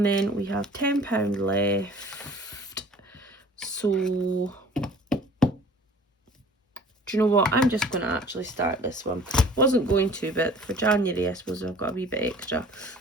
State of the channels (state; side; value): normal; both; correlation 0.49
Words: then we have £10 left. So do you know what? I'm just going to actually start this one. Wasn't going to, but for January, I suppose I've got a wee bit extra.